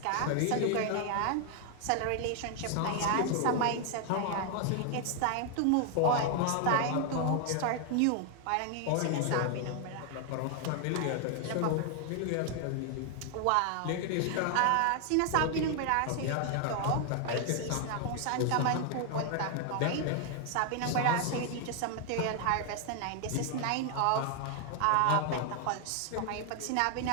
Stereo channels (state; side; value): different; both; correlation 0.00